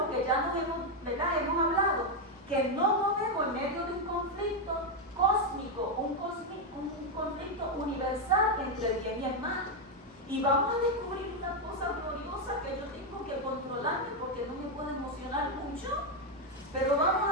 que ya nos hemos hablado, que no movemos en medio de un conflicto cósmico, un conflicto universal entre el bien y el mal. Y vamos a descubrir una cosa gloriosa que yo tengo que controlarme porque no me puedo emocionar mucho, pero vamos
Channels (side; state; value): both; normal; correlation 0.04